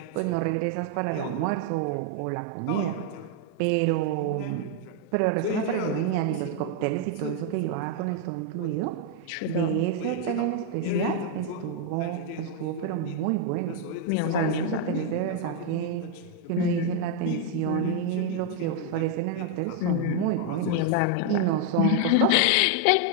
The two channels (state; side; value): different; both; correlation 0.00